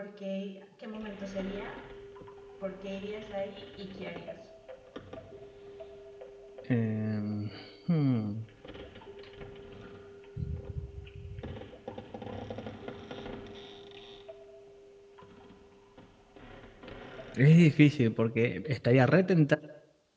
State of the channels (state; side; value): identical; both; correlation 1.00